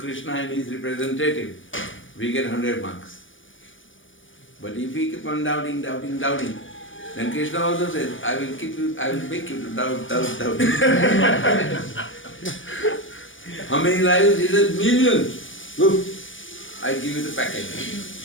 and his representative, we get 100 marks. But if we keep on doubting, doubting, doubting, then Krishna also says, I will make you to doubt, doubt, doubt. How many lives? He says, millions. Look, I give you the package.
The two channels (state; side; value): late; right; 0.57 ms